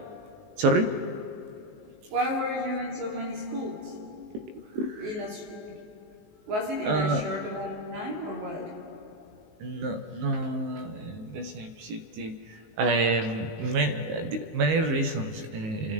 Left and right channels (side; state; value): left; late; 19 ms